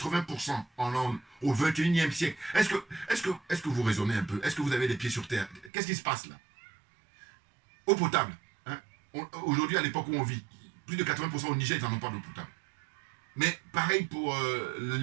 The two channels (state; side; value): drops out; left; at 5.7 s